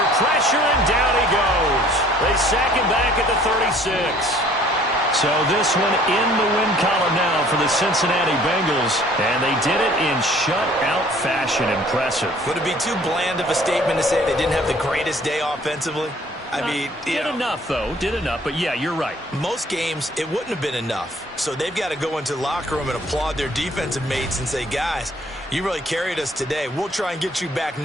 pressure, and down he goes. They sack him back at the 36. So this one in the win column now for the Cincinnati Bengals, and they did it in shutout fashion. Impressive. Would it be too bland of a statement to say they didn't have the greatest day offensively? I mean, did enough, though. Did enough, but yeah, you're right. Most games, it wouldn't have been enough. So they've got to go into the locker room and applaud their defensive mates and say, guys, you really carried us today. We'll try and get you back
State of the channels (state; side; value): normal; both; correlation 0.56